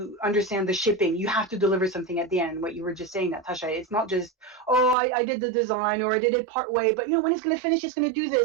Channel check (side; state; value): left; drops out; at 5.0 s